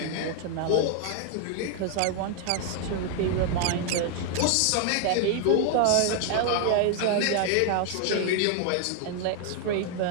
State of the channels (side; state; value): both; different; correlation 0.00